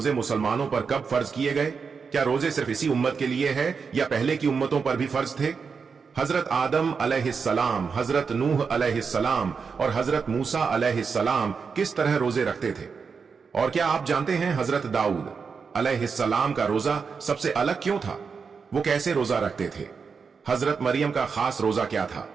मुसलमानों पर कब फर्ज किए गए? क्या रोजे सिर्फ इसी उम्मत के लिए है या पहले की उम्मतों पर भी फर्ज थे? हजरत आदम अलैहिस्सलाम, हजरत नूह अलैहिस्सलाम और हजरत मूसा अलैहिस्सलाम किस तरह रोजे रखते थे? और क्या आप जानते हैं हजरत दाऊद अलैहिस्सलाम का रोजा सबसे अलग क्यों था? वो कैसे रोजा रखते थे? हजरत मरियम का खास रोजा क्या था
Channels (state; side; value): quieter; left; 5.6 dB